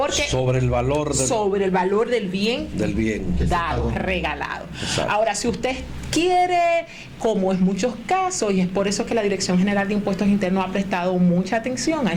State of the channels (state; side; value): identical; both; correlation 1.00